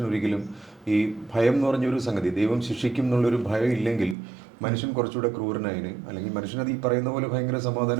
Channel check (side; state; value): left; drops out; at 4.2 s